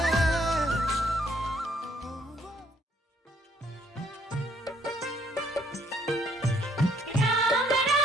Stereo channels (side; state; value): both; normal; correlation 0.67